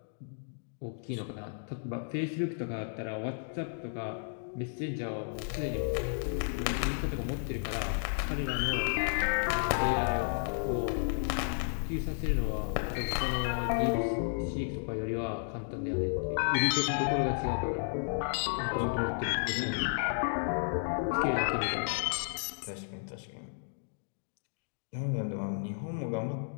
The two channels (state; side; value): silent; right; digital silence